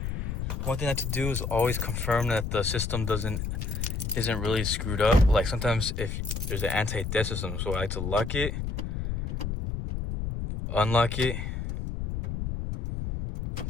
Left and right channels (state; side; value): noise; left; rumble, 3 dB below the sound